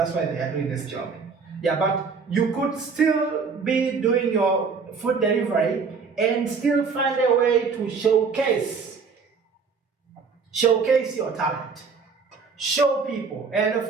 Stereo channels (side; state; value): left; quieter; 5.2 dB